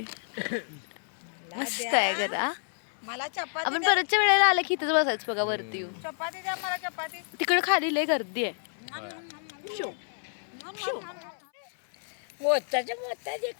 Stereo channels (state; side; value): silent; right; 58 dB below the other